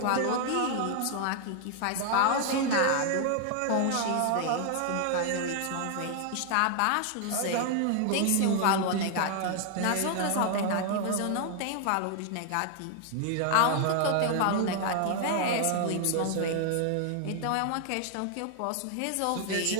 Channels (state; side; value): different; both; correlation 0.00